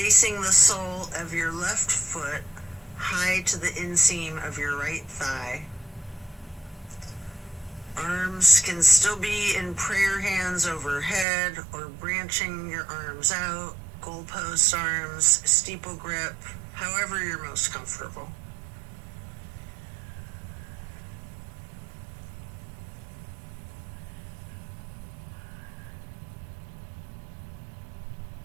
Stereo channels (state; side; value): drops out; left; at 11.2 s